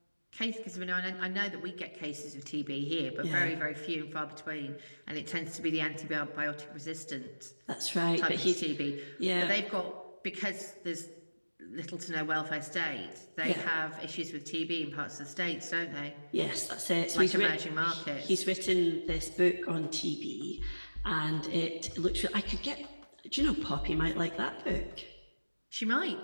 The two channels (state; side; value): inverted; both; correlation -1.00